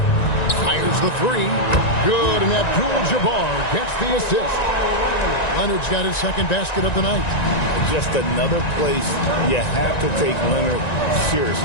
fires the 3. Good, and Abdul-Jabbar gets the assist. Leonard's got his second basket of the night. Just another place you have to take Leonard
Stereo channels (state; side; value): late; right; 1.9 ms